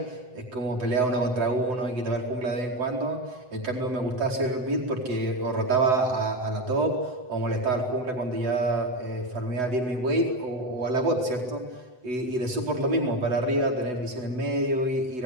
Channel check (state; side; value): late; left; 8.0 ms